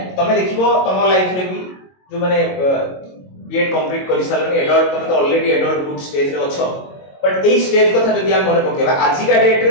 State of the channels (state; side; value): late; right; 22 ms